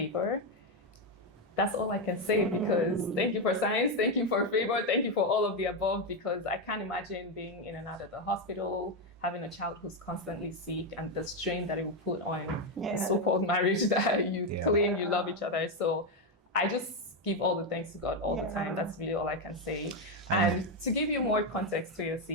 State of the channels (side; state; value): both; normal; correlation 0.07